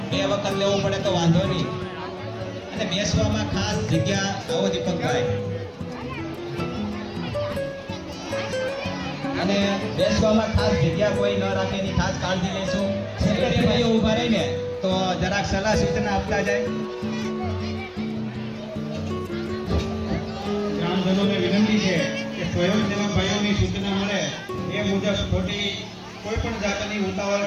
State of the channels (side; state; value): both; identical; correlation 1.00